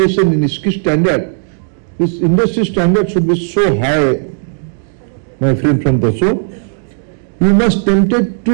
इसकी स्टैंडर्ड, इस industry standard should be so high, my friend from Dassault, you must tempted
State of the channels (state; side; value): silent; left; digital silence